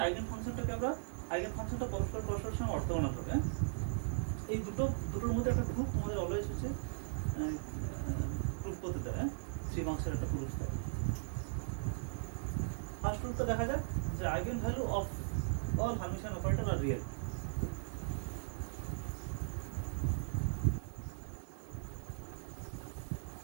আইগেন ফাংশনটাকে আমরা আইগেন ফাংশনটা পরস্পরের সঙ্গে অর্থোগোনাল হবে। এই দুটোর মধ্যে একটা প্রুফ তোমাদের অলওয়েজ হচ্ছে প্রুফ করতে দেয়, 3 মার্কসের একটা প্রুফ দেয়। ফার্স্ট প্রুফটা দেখা যাক যে eigenvalue of all Hermitian operator are real.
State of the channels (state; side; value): silent; left; digital silence